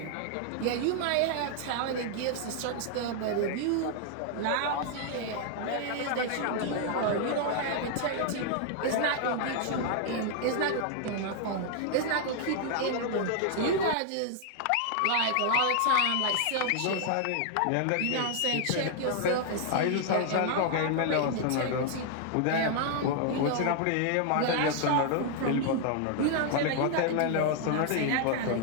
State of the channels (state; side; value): different; both; correlation 0.00